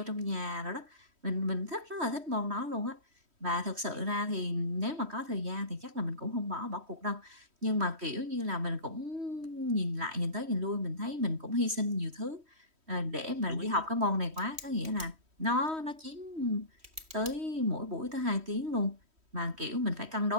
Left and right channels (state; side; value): late; left; 3.1 ms